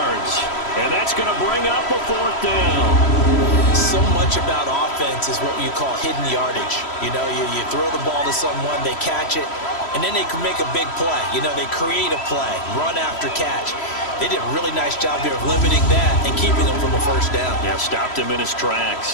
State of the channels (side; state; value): right; late; 3.1 ms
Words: And that's going to bring up a 4th down. So much about offense is what you call hidden yardage. You know, you throw the ball to someone, they catch it, and then they can make a big play. You know, they create a play, run after catch. They did a really nice job here of limiting that and keeping him from a 1st down. Yeah, stopped him in his